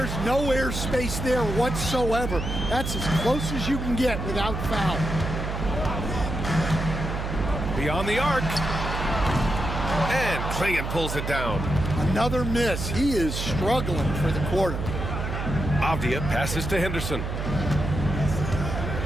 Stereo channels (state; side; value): noise; right; hum, 4 dB below the sound